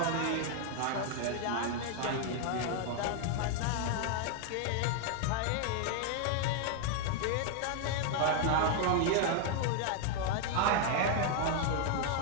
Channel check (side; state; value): both; different; correlation 0.00